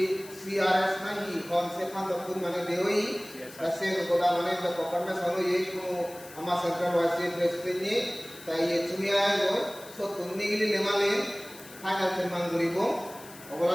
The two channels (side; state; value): left; noise; hiss, 18 dB below the sound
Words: nahi konsep kantor pun mana dewi kasih kepada mana yang berkokarnya selalu ye kuno ama central waisi presiden ni তাই চুমিয়া গৈ সব কুন্নিগিলি নেমালে ফাইনাল ফেরমান করিব